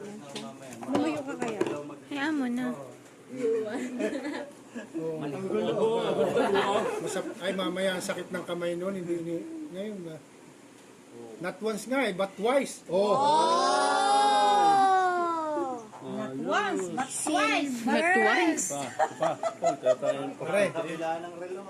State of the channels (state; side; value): identical; both; correlation 1.00